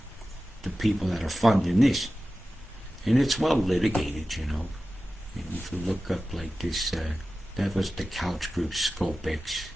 The people that are funding this, and it's well litigated, you know. And if you look up like this, that was the Couch Group ScopeX.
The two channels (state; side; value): normal; both; correlation 0.95